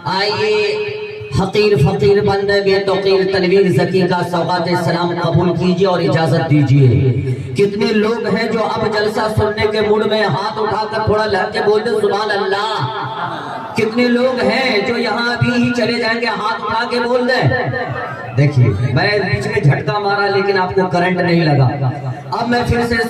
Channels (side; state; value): both; identical; correlation 1.00